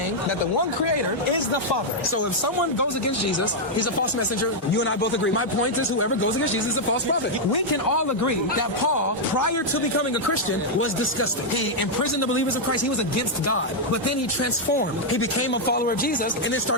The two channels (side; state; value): both; normal; correlation -0.03